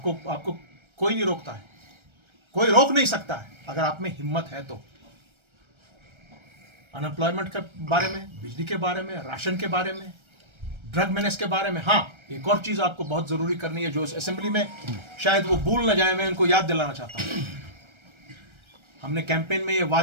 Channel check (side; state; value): left; late; 1.3 ms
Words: कोई नहीं रोकता है, कोई रोक नहीं सकता है अगर आप में हिम्मत है तो। अनएम्प्लॉयमेंट के बारे में, बिजली के बारे में, राशन के बारे में, ड्रग मेनेस के बारे में। हाँ, एक और चीज़ आपको बहुत ज़रूरी करनी है जो इस असेंबली में शायद वो भूल न जाए, मैं उनको याद दिलाना चाहता हूँ। हमने कैंपेन में ये